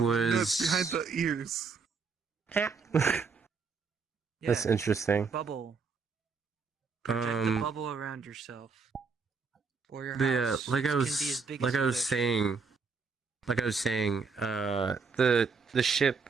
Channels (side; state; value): left; quieter; 4.9 dB